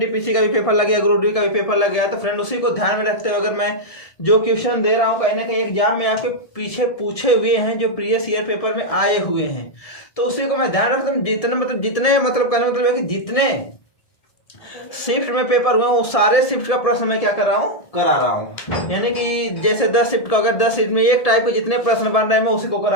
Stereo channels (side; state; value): right; late; 1.7 ms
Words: का भी पेपर लग गया, ग्रुप डी का भी पेपर लग गया। तो फ्रेंड उसी को ध्यान में रखते हुए अगर मैं जो क्वेश्चन दे रहा हूँ कहीं ना कहीं एग्जाम में आपके पीछे पूछे हुए हैं, जो प्रीवियस ईयर पेपर में आए हुए हैं, तो उसी को मैं ध्यान रखता हूँ। जितने मतलब कहने मतलब है कि जितने शिफ्ट में पेपर हुए वो सारे शिफ्ट का प्रश्न मैं क्या कर रहा हूँ, करा रहा हूँ। यानी कि जैसे 10 शिफ्ट का, अगर 10 शिफ्ट में एक टाइप के जितने प्रश्न बन रहे हैं मैं उसी को